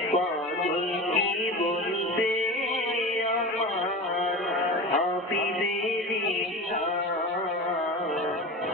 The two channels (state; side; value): normal; both; correlation 0.30